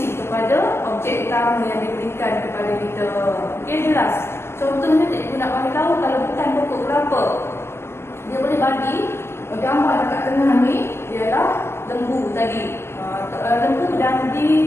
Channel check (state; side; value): late; right; 0.12 ms